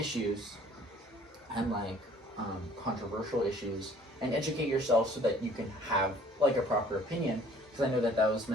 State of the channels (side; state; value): both; normal; correlation 0.54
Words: and like controversial issues, and educate yourself so that you can have like a proper opinion, because I know that was